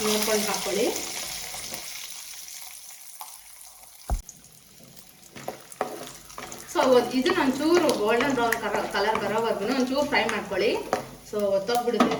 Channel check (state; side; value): identical; both; correlation 1.00